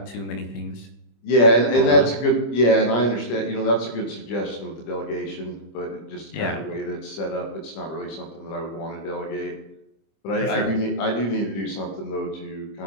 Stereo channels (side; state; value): right; late; 25 ms